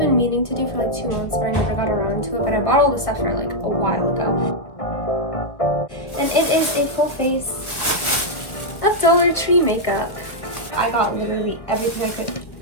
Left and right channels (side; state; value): right; late; 1.7 ms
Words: meaning to do for like 2 months, but I never got around to it. But I bought all the stuff for like a while ago. And it is a full face of Dollar Tree makeup. I got literally everything I